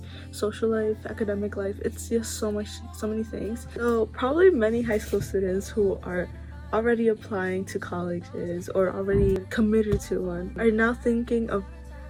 social life, academic life. It's just so many things. So probably many high school students who are already applying to colleges or already committed to one are now thinking of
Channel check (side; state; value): both; identical; correlation 1.00